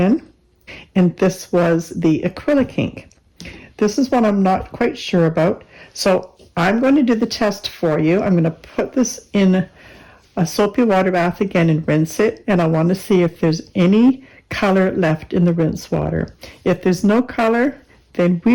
And this was the acrylic ink. This is what I'm not quite sure about. So I'm going to do the test for you. I'm going to put this in a soapy water bath again and rinse it. And I want to see if there's any color left in the rinse water. If there's no color, then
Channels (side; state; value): both; identical; correlation 1.00